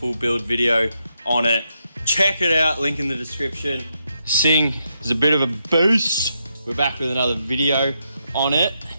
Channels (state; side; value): inverted; both; correlation -0.82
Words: build video on it, check it out, link in the description. Sing is a bit of a boost. We're back with another video on it.